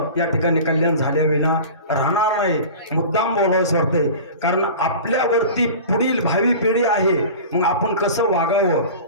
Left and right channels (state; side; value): inverted; both; correlation -0.36